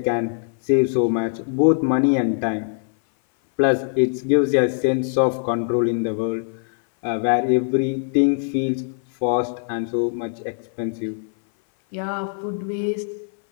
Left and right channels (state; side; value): silent; right; 59 dB below the other